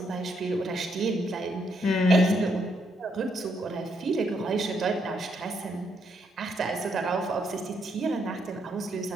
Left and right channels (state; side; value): normal; both; correlation 0.75